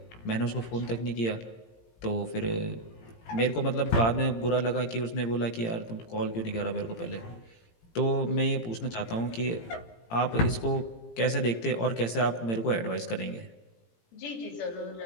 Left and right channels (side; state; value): right; late; 18 ms